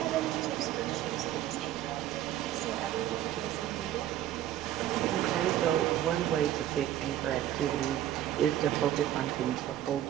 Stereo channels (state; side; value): quieter; left; 12.3 dB